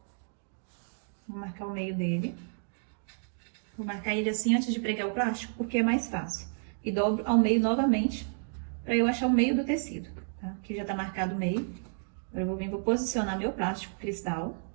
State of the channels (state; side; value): silent; left; digital silence